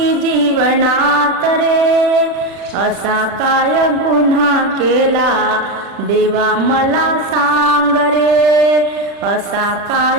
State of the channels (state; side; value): late; left; 40 ms